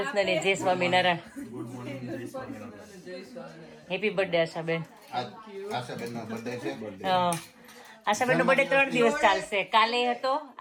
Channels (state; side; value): identical; both; correlation 1.00